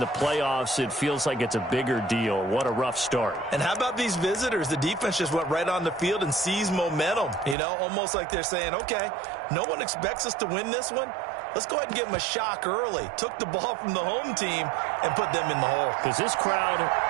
playoffs, it feels like it's a bigger deal. What a rough start. And how about these visitors? The defense just went right on the field and seized momentum. You know, almost like they're saying, okay, no one expects us to win this one. Let's go ahead and give them a shock early. Took the ball from the home team and put them in the hole. Because this crowd,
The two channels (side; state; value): left; drops out; at 7.6 s